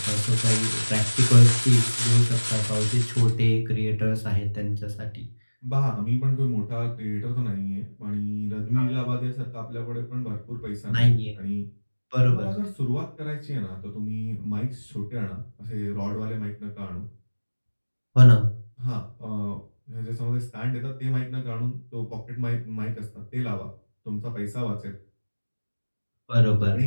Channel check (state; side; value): inverted; both; correlation -1.00